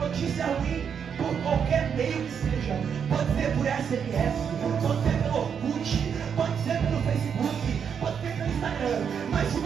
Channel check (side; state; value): left; quieter; 7.3 dB